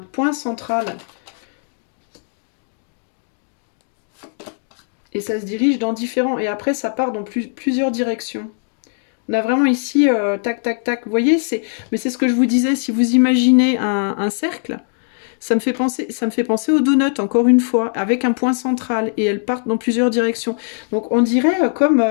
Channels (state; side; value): silent; right; 64 dB below the other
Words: central. Et ça se dirige dans différents... Et après, ça part dans plusieurs directions. On a vraiment ici, tac, tac, tac. Vous voyez, mais c'est ce que je vous disais. Si vous imaginez un cercle, ça me fait penser aux donuts, encore une fois, avec un point central. Et elles partent dans plusieurs directions. Donc, on dirait comme...